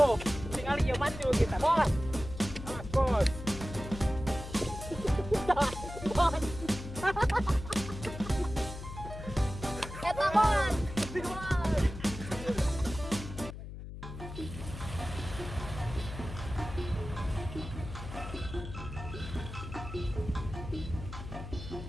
Tinggal iya maju kita bos. Mas bos. Bos. Eta bos.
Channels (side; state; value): left; noise; hum, 10 dB below the sound